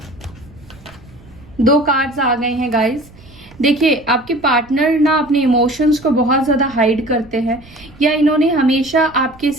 2 कार्ड्स आ गए हैं गाइस। देखिए आपके पार्टनर ना अपने इमोशंस को बहुत ज्यादा हाइड करते हैं, या इन्होंने हमेशा आपके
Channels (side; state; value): right; noise; rumble, 23 dB below the sound